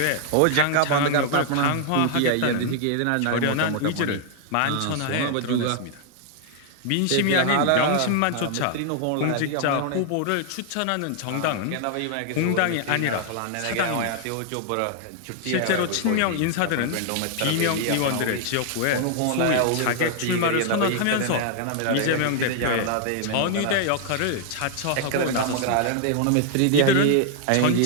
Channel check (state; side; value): different; both; correlation 0.00